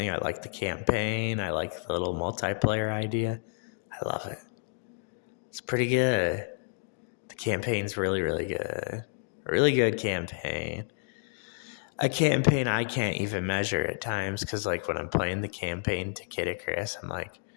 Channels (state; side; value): silent; right; digital silence